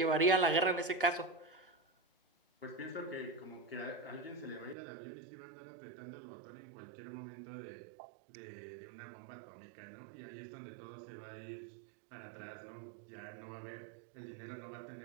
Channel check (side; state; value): left; drops out; at 4.8 s